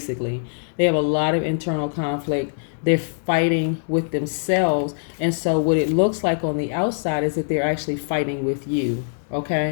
They have a lot of internal conflict. They're fighting with themselves. And so what it looks like on the outside is that they're actually fighting with you.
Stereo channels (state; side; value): silent; right; 64 dB below the other